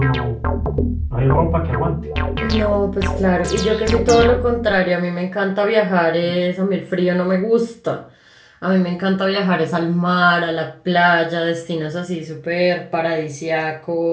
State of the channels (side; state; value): both; identical; correlation 1.00